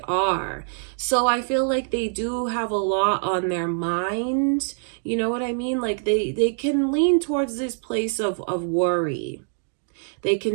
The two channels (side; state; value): left; silent; digital silence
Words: are. So I feel like they do have a lot on their mind. You know what I mean? Like they can lean towards this place of worry. They